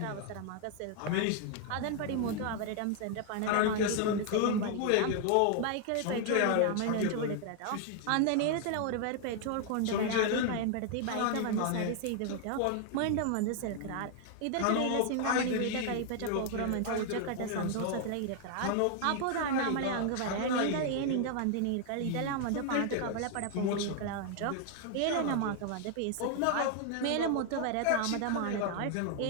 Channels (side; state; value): both; different; correlation 0.00